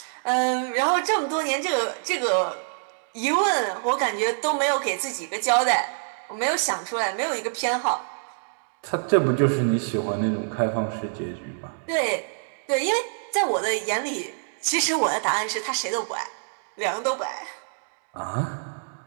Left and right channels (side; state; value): left; silent; digital silence